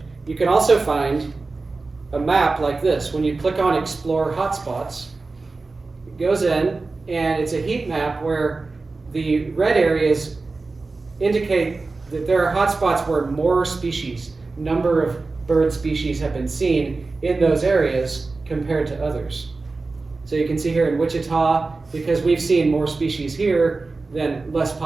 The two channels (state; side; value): quieter; left; 3.7 dB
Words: you can also find a map like this. When you click on Explore Hotspots, it goes in, and it's a heat map where the red areas indicate that there are hotspots where more species, number of bird species have been seen in those areas compared to others. So you can see here in Wichita, because we've seen more species here than less